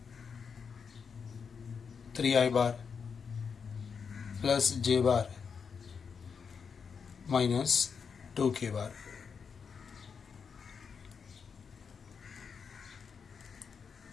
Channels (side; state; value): right; quieter; 6.1 dB